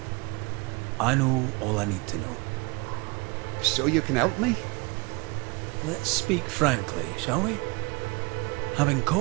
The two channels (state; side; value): quieter; left; 28.1 dB